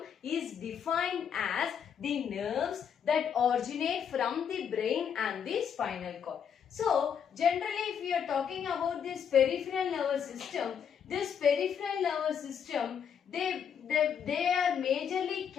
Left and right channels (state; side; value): quieter; right; 7.7 dB